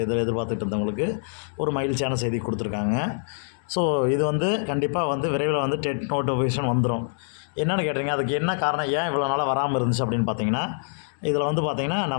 எதிர்பார்த்துட்டு இருந்தவங்களுக்கு ஒரு மகிழ்ச்சியான செய்தி கொடுத்துருக்காங்க. ஸோ இது கண்டிப்பாக விரைவில் டெட் நோட்டிஃபிகேஷன் வந்துடும். என்னென்னு கேட்டிங்க, அதுக்கு என்ன காரணம், ஏன் இவ்வளோ நாளாக வராமல் இருந்துச்சு அப்படின்னு பார்த்தீங்கன்னா, இதில் பார்த்திங்கன்னா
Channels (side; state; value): right; silent; digital silence